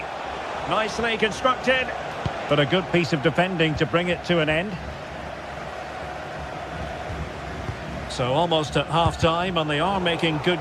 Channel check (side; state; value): both; identical; correlation 1.00